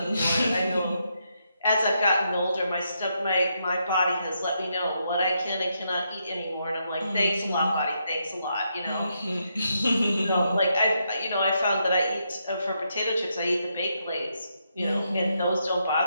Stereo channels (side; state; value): both; inverted; correlation -0.80